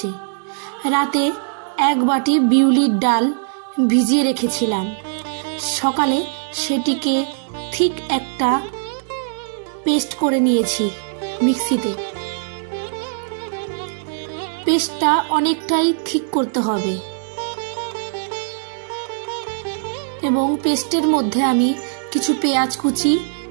রাতে 1 বাটি বিউলির ডাল ভিজিয়ে রেখেছিলাম। সকালে সেটিকে ঠিক একটা পেস্ট করে নিয়েছি মিক্সিতে। পেস্টটা অনেকটাই ঠিক করতে হবে এবং পেস্টের মধ্যে আমি কিছু পেঁয়াজ কুচি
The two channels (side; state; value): left; silent; 65 dB below the other